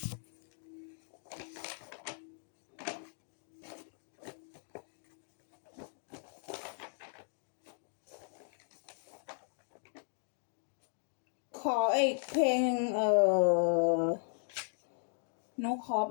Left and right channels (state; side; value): silent; right; 53 dB below the other